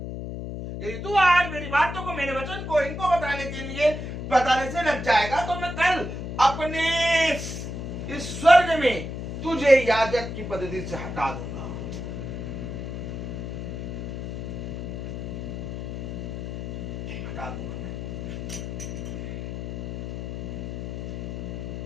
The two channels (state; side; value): noise; left; hum, 6 dB below the sound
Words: यदि तू आज मेरी बातों को, मेरे वचन को इनको बताने से लग जाएगा, तो मैं कल अपने इस स्वर्ग में तुझे याजक की पद्धति से हटा दूंगा। हटा दूंगा